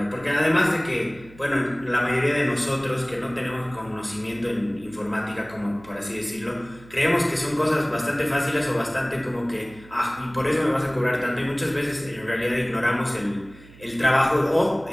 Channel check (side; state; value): right; noise; hum, 22 dB below the sound